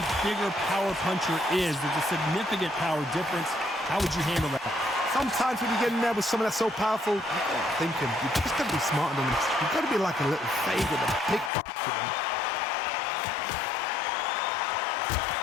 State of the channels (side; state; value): right; drops out; at 11.5 s